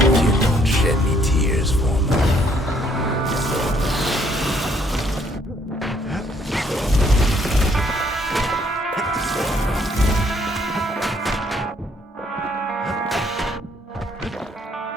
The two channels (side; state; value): both; normal; correlation 0.67